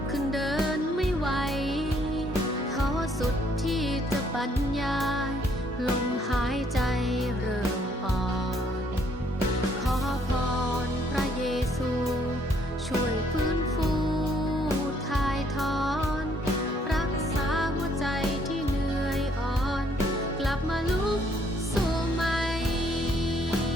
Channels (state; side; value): normal; both; correlation 0.67